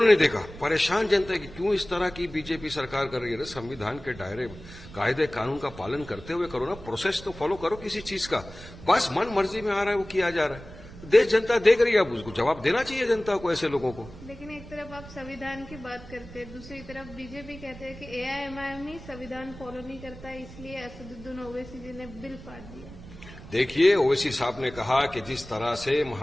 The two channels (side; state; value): right; noise; rumble, 16 dB below the sound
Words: नहीं देखा। परेशान जनता है कि क्यों इस तरह की बीजेपी सरकार कर रही है। संविधान के दायरे, कायदे कानून का पालन करते हुए करो ना, प्रोसेस तो फॉलो करो किसी चीज का। बस मन मर्जी में आ रहा है वो किया जा रहा है। देश जनता देख रही है, अब उसको जवाब देना चाहिए जनता को, ऐसे लोगों को। लेकिन एक तरफ आप संविधान की बात करते हैं, दूसरी तरफ बीजेपी कहते हैं कि एआईएमआईएम ही संविधान फॉलो नहीं करता, इसलिए असदुद्दीन ओवैसी जी ने बिल फाड़ दिया। देखिए, ओवैसी साहब ने कहा कि जिस तरह से